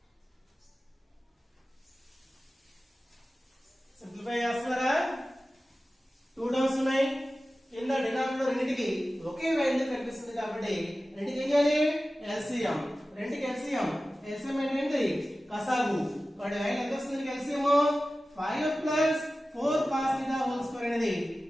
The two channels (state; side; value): normal; both; correlation 0.95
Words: Simplify చేస్తారా? 2 టర్మ్స్ ఉన్నాయి, కింద డినామినేటర్ రెండింటికి ఒకే వాల్యూ కనిపిస్తుంది కాబట్టి రెండింటికి ఏం చేయాలి LCM. రెండింటికి LCM అంటే ఏంటి కసాగు. వాడి వాల్యూ ఎంత వస్తుంది LCM 5 + 4 cos θ హోల్ స్క్వేర్ అనేది